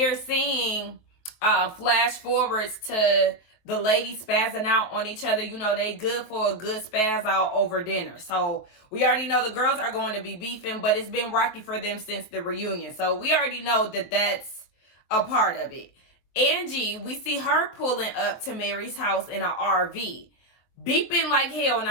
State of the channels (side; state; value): right; late; 23 ms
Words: seeing flash forwards to the ladies spazzing out on each other. They good for a good spaz out over dinner. So we already know the girls are going to be beefing, but it's been rocky for them since the reunion. So we already know that that's a part of it. Angie, we see her pulling up to Mary's house in an RV, beeping like hell. And